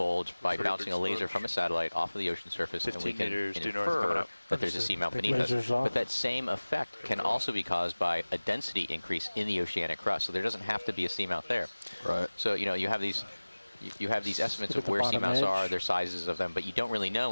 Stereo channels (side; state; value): both; inverted; correlation -1.00